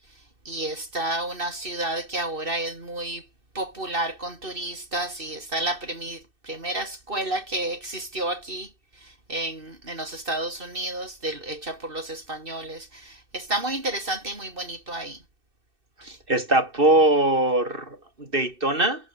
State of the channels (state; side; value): late; left; 2.6 ms